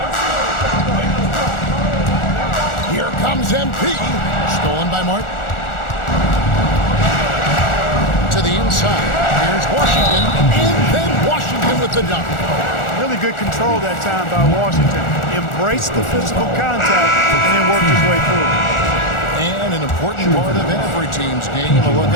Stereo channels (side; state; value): right; late; 1.4 ms